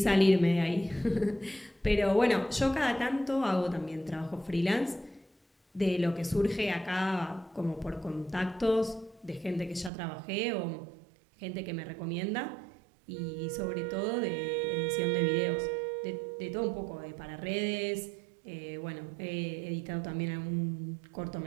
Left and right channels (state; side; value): drops out; left; at 9.9 s